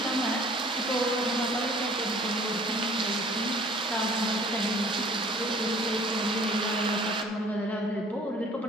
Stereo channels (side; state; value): both; normal; correlation 0.52